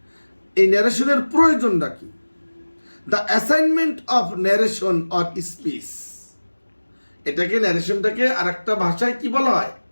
এই ন্যারেশনের প্রয়োজনটা কি? The assignment of narration or speech. এটাকে ন্যারেশনটাকে আর একটা ভাষায় কি বলা হয়?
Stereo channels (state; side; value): inverted; both; correlation -1.00